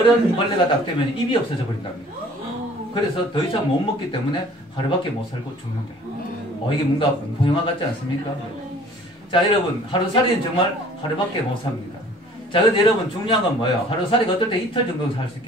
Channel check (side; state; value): both; normal; correlation 0.51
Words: 딱 되면 입이 없어져 버린답니다. 그래서 더 이상 못 먹기 때문에 하루밖에 못 살고 죽는데요. 이게 뭔가 공포영화 같지 않습니까? 자, 여러분, 하루살이는 정말 하루밖에 못 삽니다. 자, 근데 여러분, 중요한 건 뭐예요? 하루살이가 어떨 때 이틀 정도 살 수